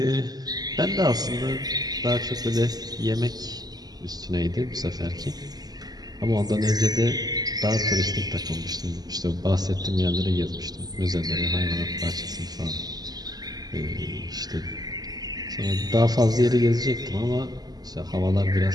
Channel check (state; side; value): late; left; 0.19 ms